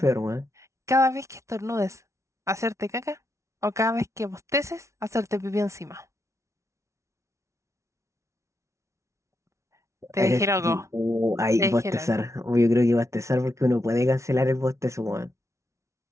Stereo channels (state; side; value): late; left; 0.14 ms